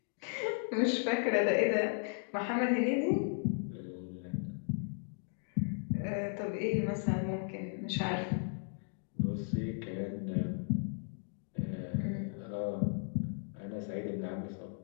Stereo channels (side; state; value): right; silent; 54 dB below the other